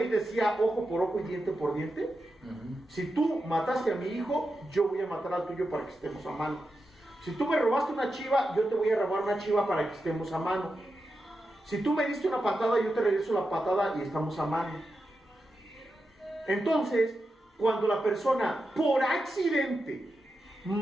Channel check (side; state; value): both; normal; correlation 0.89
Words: decía ojo por ojo y diente por diente? Si tú mataste a mi hijo, yo voy a matar al tuyo para que estemos a mano. Si tú me robaste una chiva, yo te voy a robar una chiva para que estemos a mano. Si tú me diste una patada, yo te regreso la patada y estamos a mano. Entonces, cuando la persona por accidente